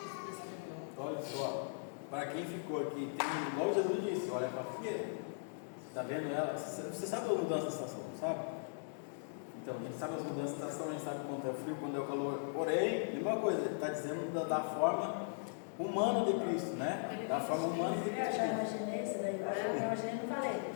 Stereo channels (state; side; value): silent; right; digital silence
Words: descreveu. Olha só, para quem ficou aqui, igual Jesus disse, olha para a figueira. Está vendo ela? Você sabe a mudança da estação, sabe? Então, a gente sabe as mudanças da estação, a gente sabe quando é frio, quando é o calor. Porém, mesma coisa, ele está dizendo da forma humana de Cristo, né? Da forma humana de Eu Cristo. já imaginei isso daí, eu imaginei, não falei.